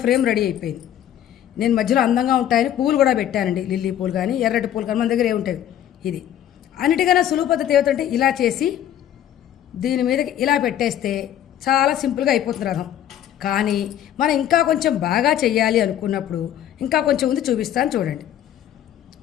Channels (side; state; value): right; quieter; 11.0 dB